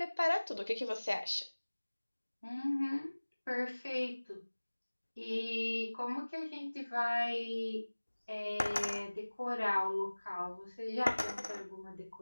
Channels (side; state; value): both; inverted; correlation -1.00